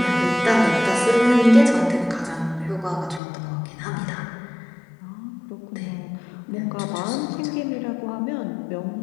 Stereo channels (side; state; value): right; drops out; at 3.2 s